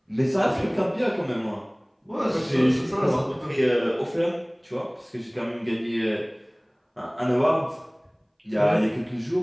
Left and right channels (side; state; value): both; identical; correlation 1.00